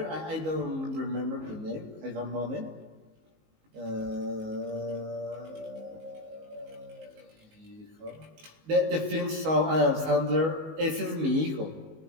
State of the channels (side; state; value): left; late; 19 ms